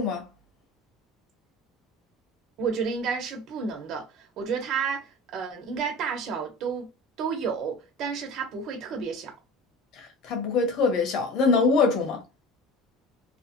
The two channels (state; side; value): normal; both; correlation 0.36